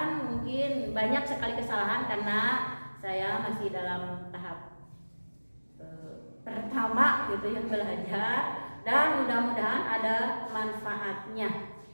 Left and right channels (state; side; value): inverted; both; correlation -1.00